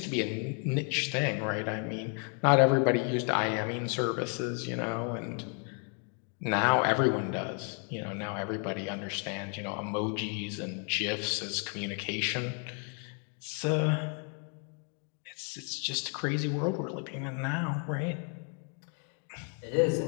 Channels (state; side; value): quieter; right; 39.3 dB